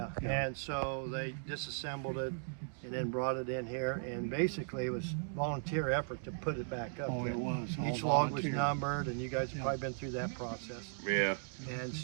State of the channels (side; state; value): left; silent; digital silence